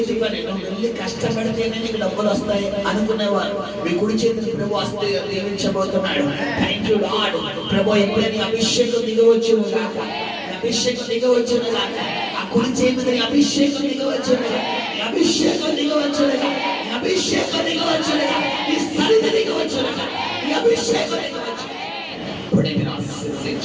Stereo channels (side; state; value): both; identical; correlation 1.00